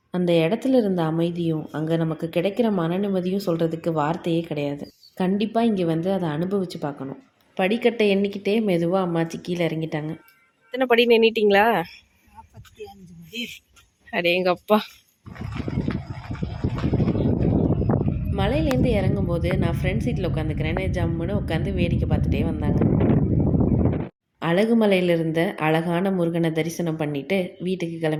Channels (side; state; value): both; identical; correlation 1.00